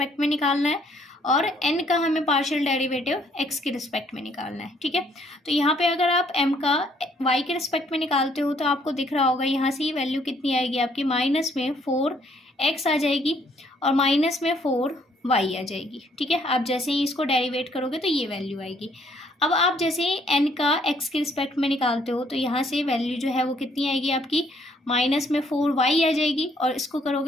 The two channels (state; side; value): normal; both; correlation 0.66